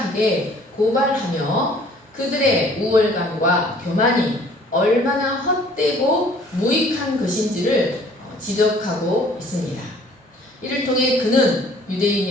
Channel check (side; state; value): both; normal; correlation 0.55